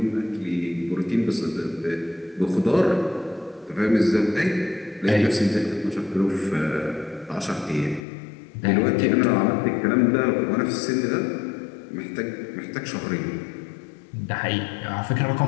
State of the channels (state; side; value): drops out; right; at 8.0 s